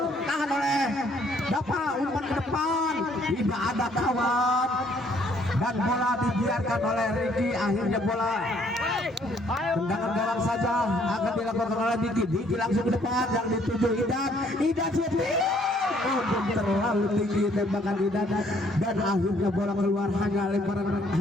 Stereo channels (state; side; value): normal; both; correlation 0.64